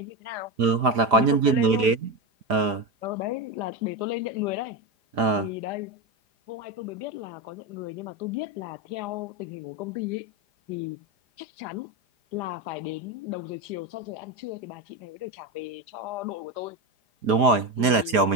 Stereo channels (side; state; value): left; late; 4.9 ms